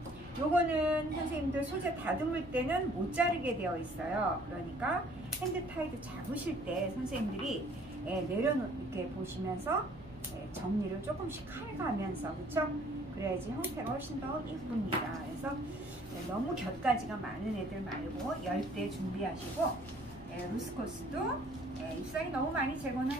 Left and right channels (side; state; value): right; noise; hum, 20 dB below the sound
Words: 요거는 선생님들 소재 다듬을 때는 못 자르게 되어 있어요. 그러니까 핸드타이드 잡으실 때 선생님들이 이렇게 보시면서 정리를 조금씩 해가면서, 그쵸? 그래야지 형태가 훨씬 더 예쁩니다. 그래서 너무 곁가지가 많은 애들 말고 10대 준비하시고, 루스커스도 잎사귀 너무 많이 제거는